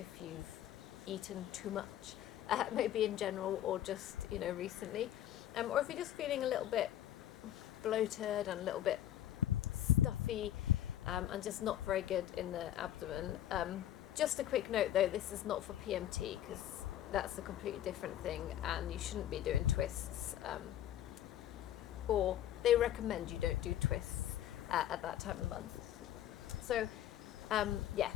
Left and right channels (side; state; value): right; quieter; 11.9 dB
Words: eaten too much, maybe in general or just recently, or if you're just feeling a little bit bloated and a little bit stuffy and just not very good in the abdomen. Just a quick note though, this is not for PMT because that's a completely different thing and you shouldn't be doing twists, or they recommend you don't do twists at that time of the month. So